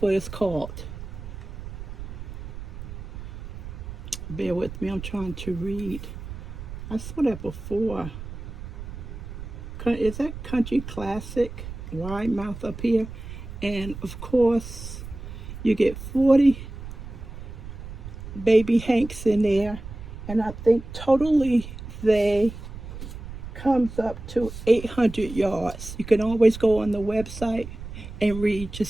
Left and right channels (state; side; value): noise; right; rumble, 10 dB below the sound